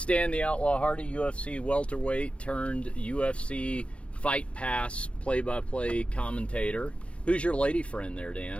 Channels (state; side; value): late; right; 0.061 ms